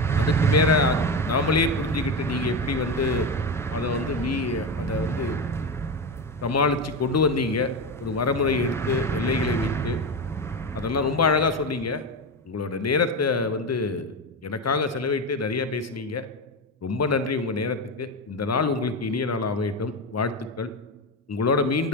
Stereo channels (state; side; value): normal; both; correlation 0.17